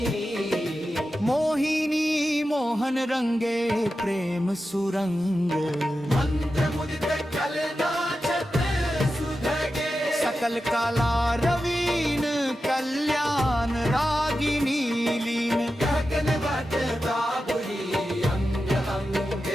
मोहन रंगे प्रेम सुरंग मंत्र मुदित कलनाचत सुधगे सकल काला रवीन कल्याण रागिनी लीन गगन वट बाबुरी अंग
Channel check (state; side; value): normal; both; correlation 0.91